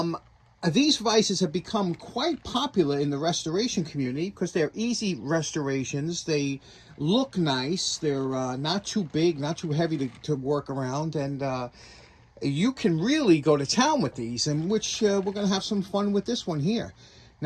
These vices have become quite popular in the restoration community because they're easy restorations. They look nice. They're not too big, not too heavy to work around. And you can really go to town with these, and which we're going to have some fun with this one here.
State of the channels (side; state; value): both; identical; correlation 1.00